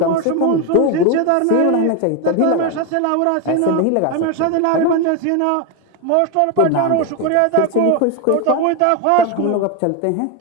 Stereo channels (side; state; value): both; different; correlation 0.02